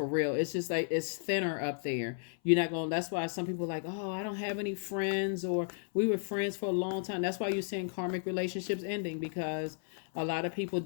real. It's just like it's thinner up there. You're not going. That's why some people are like, oh, I don't have any friends, or we were friends for a long time. That's why you're seeing karmic relationships ending, because a lot of people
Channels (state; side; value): silent; right; 55 dB below the other